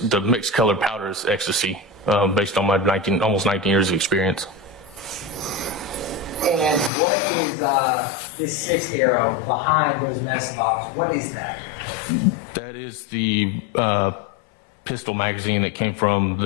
colored powders, ecstasy, based on my almost 19 years of experience. And what is this sixth arrow behind those medicine bottles? What is that? That is the pistol magazine that came from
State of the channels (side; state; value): right; drops out; at 6.9 s